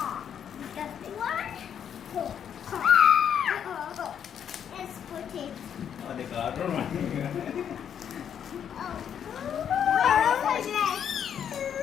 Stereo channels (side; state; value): right; quieter; 8.6 dB